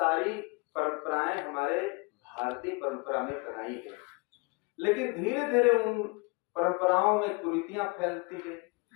परंपराएं हमारे भारतीय परंपरा में बनाई गई, लेकिन धीरे धीरे उन परंपराओं में कुरीतियां फैलती गई।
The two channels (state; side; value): quieter; right; 29.7 dB